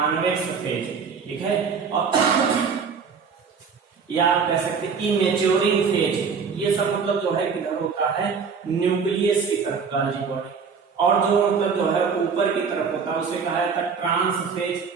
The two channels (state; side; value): quieter; left; 5.8 dB